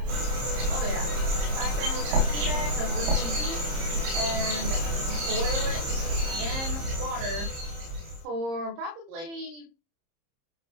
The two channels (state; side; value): late; left; 30 ms